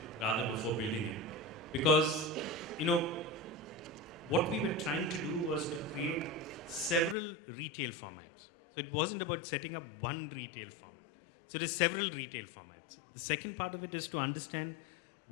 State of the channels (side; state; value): right; drops out; at 7.2 s